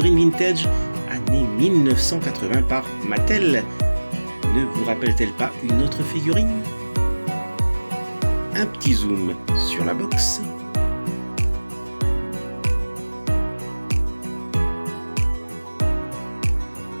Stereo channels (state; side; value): inverted; both; correlation -1.00